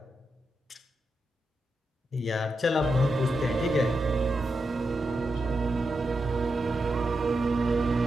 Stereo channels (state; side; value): normal; both; correlation 0.86